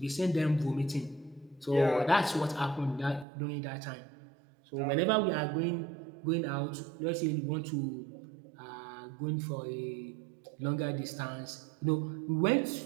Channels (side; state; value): left; drops out; at 3.2 s